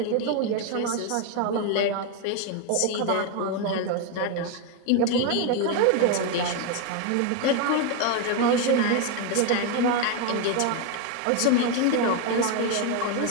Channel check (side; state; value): both; different; correlation 0.02